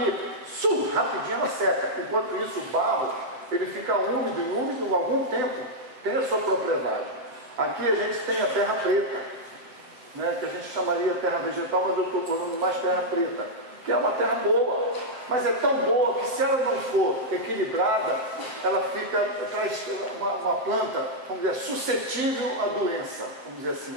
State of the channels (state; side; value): late; left; 7.7 ms